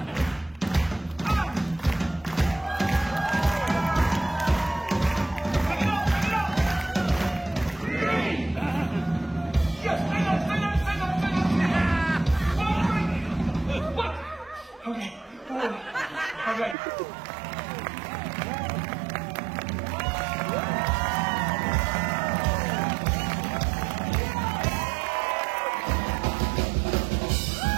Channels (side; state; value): left; drops out; at 16.8 s